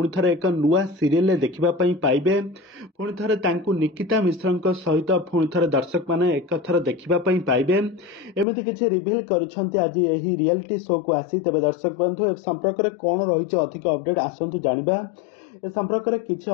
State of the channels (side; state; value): right; drops out; at 8.5 s